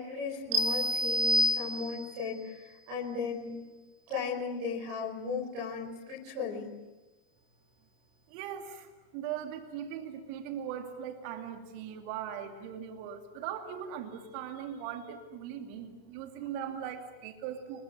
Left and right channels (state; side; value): late; left; 30 ms